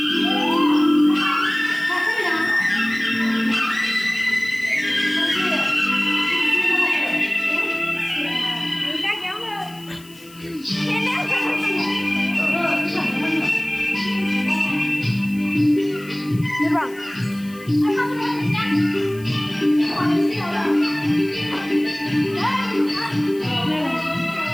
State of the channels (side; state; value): left; noise; hiss, 23 dB below the sound